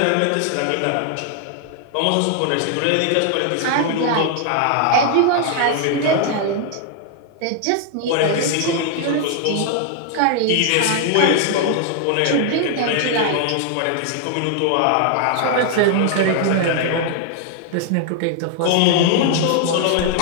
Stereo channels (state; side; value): different; both; correlation 0.00